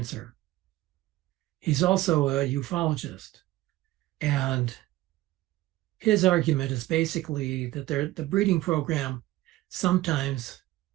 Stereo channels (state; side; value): quieter; left; 16.7 dB